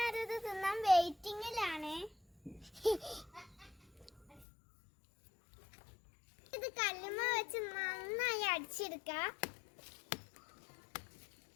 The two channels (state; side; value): drops out; right; at 4.5 s